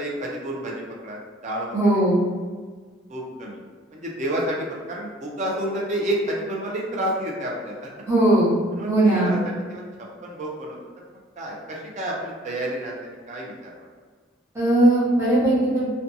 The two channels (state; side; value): normal; both; correlation 0.56